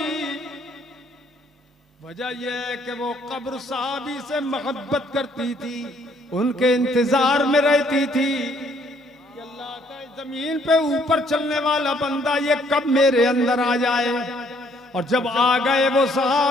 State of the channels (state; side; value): normal; both; correlation 0.65